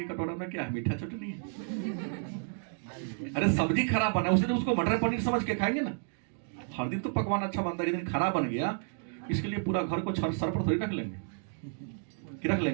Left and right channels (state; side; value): silent; left; 57 dB below the other